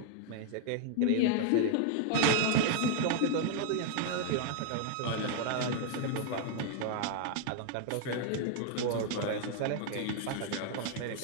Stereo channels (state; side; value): different; both; correlation 0.00